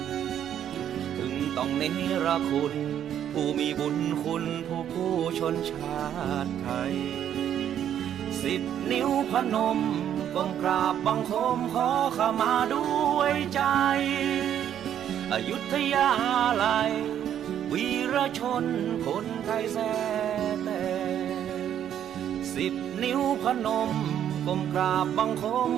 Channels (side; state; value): left; quieter; 10.0 dB